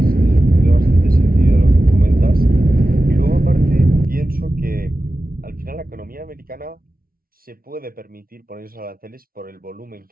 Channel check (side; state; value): left; late; 0.43 ms